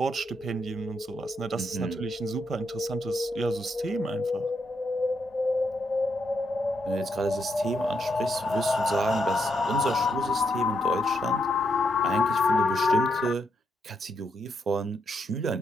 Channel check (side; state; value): both; normal; correlation 0.79